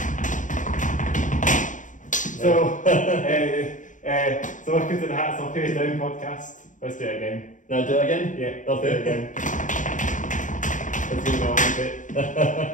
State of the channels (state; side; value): late; right; 0.37 ms